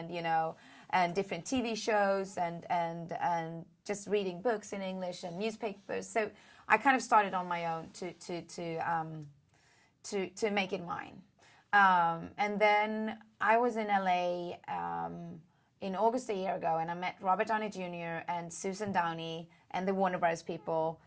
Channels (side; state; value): both; identical; correlation 1.00